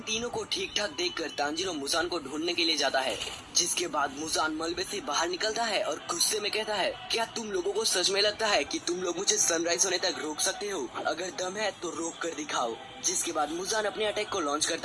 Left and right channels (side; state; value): both; identical; correlation 1.00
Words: तीनों को ठीक ठाक देखकर तांजीरो मुजान को ढूंढने के लिए जाता है, जिसके बाद मुजान मलबे से बाहर निकलता है और गुस्से में कहता है, क्या तुम लोगों को सच में लगता है कि तुम लोग मुझे सनराइज होने तक रोक सकते हो? अगर दम है तो रोक कर दिखाओ। जिसके बाद मुजान अपने अटैक को लॉन्च